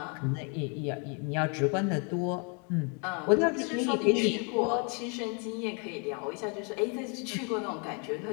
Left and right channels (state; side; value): quieter; right; 36.5 dB